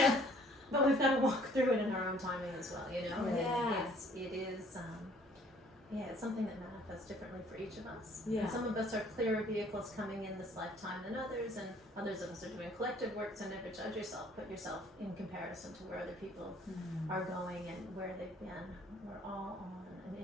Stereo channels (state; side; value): normal; both; correlation 0.58